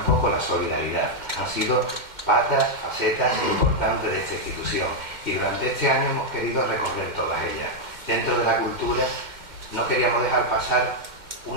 la solidaridad. Han sido patas, facetas importantes de esta institución y durante este año hemos querido recorrer todas ellas. Dentro de la cultura no queríamos dejar pasar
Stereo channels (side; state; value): left; late; 2.1 ms